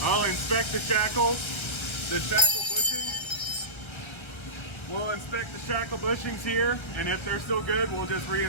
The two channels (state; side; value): late; right; 1.3 ms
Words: I'll inspect the shackles. The shackle bushings. We'll inspect the shackle bushings here, and if they're still good, we'll just